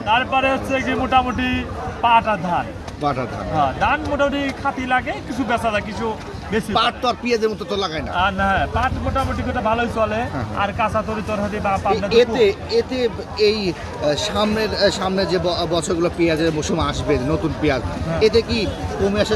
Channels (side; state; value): both; identical; correlation 1.00